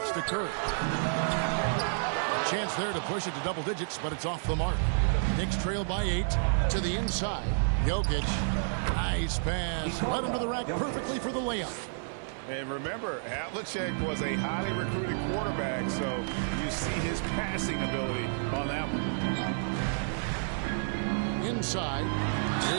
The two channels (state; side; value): silent; left; 57 dB below the other